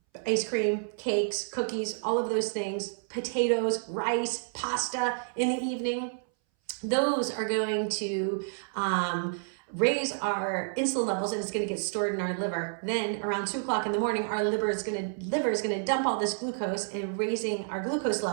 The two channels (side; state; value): left; silent; 58 dB below the other